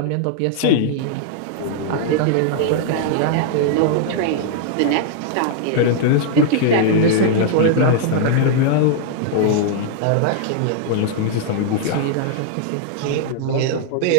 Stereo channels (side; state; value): both; different; correlation -0.01